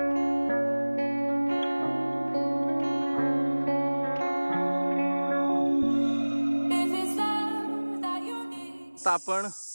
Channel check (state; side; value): inverted; both; correlation -1.00